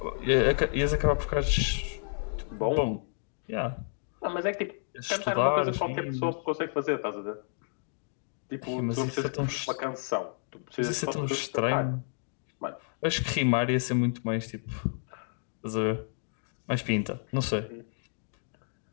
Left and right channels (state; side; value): silent; right; 57 dB below the other